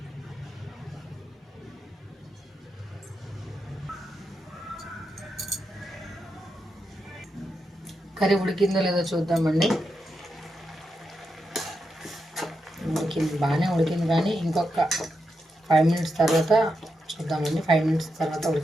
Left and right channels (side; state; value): both; normal; correlation 0.86